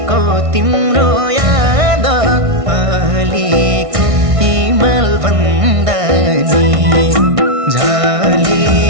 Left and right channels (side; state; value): left; late; 1.6 ms